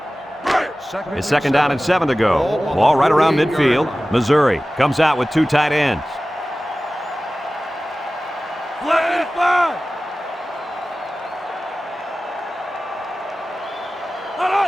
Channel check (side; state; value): both; normal; correlation 0.96